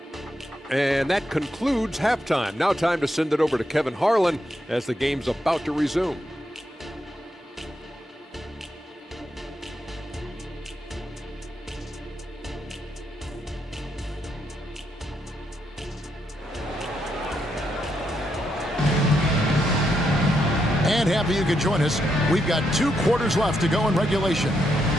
And that concludes halftime. Now time to send it over to Kevin Harlan as the game's about to resume. And happy you could join us. We've got 2 quarters left to go in regulation.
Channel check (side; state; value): both; normal; correlation 0.80